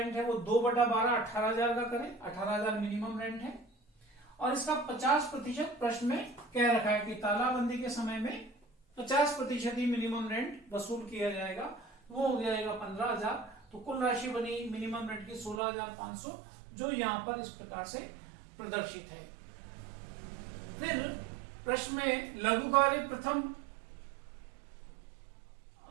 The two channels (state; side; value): drops out; left; at 15.6 s